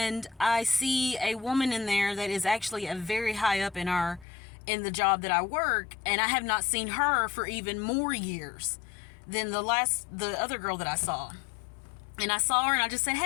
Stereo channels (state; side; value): drops out; right; at 4.2 s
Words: I see a woman in there that is actually a very high up in the job that I work, and I have not seen her for even more years than the other girl that I saw. And I saw her and I just said,